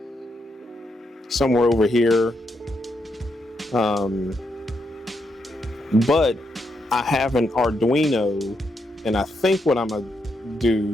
somewhere over here. But I have an Arduino, and I think what I'm gonna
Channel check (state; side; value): normal; both; correlation 0.80